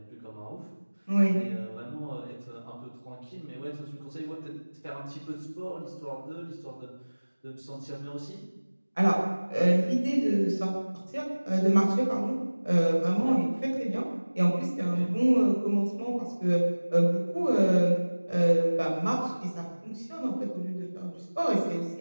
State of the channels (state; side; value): inverted; both; correlation -1.00